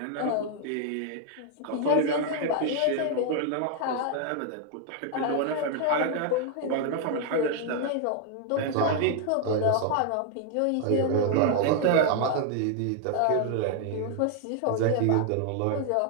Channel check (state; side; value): different; both; correlation 0.00